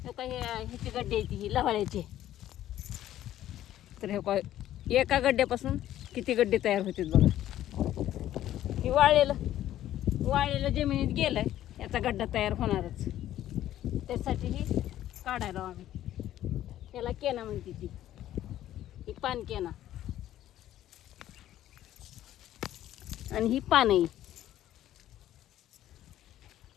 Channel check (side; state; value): right; quieter; 12.8 dB